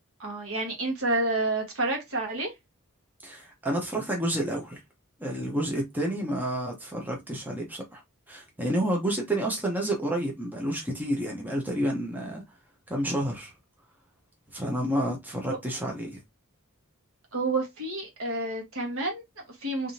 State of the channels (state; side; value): normal; both; correlation 0.37